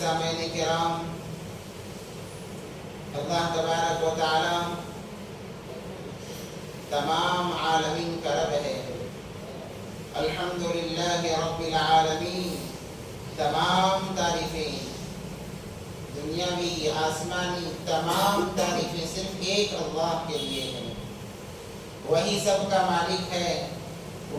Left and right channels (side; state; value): both; identical; correlation 1.00